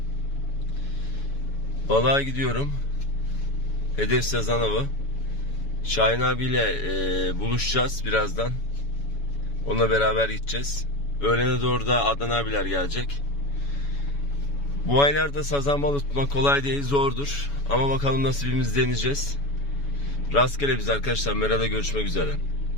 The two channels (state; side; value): late; right; 7.1 ms